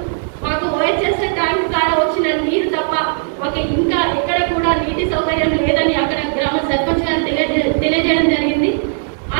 మాకు ఓహెచ్ఎస్ ట్యాంక్ ద్వారా వచ్చిన నీరు తప్ప మాకు ఇంకా ఎక్కడ కూడా నీటి సౌకర్యం లేదని అక్కడ గ్రామ సర్పంచ్ గారు తెలియజేయడం జరిగింది. ఆ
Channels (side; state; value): left; silent; digital silence